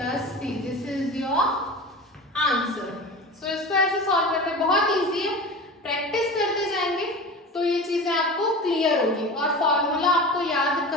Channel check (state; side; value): normal; both; correlation 0.32